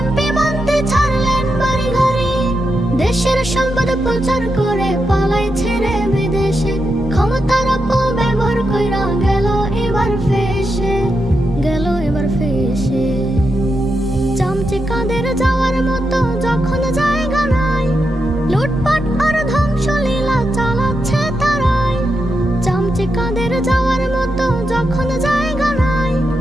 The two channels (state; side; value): normal; both; correlation 0.85